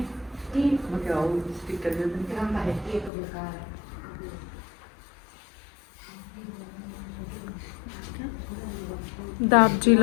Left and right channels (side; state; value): right; drops out; at 3.1 s